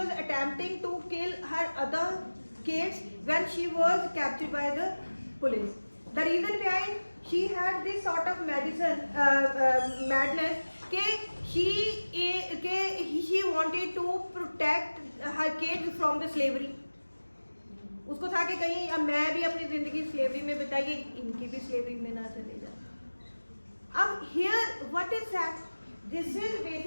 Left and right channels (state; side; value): inverted; both; correlation -1.00